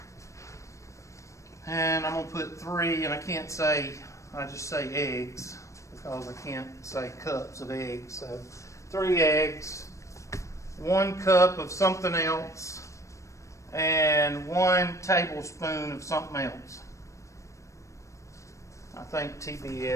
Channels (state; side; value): late; right; 0.15 ms